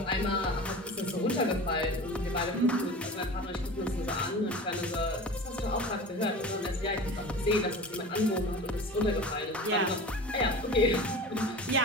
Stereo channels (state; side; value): normal; both; correlation 0.35